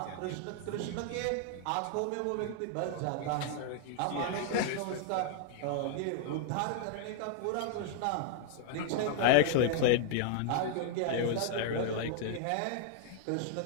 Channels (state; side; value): different; both; correlation 0.00